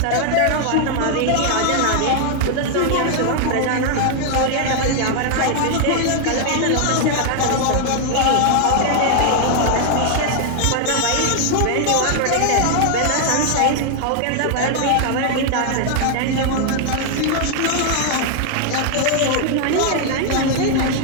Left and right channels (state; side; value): different; both; correlation 0.00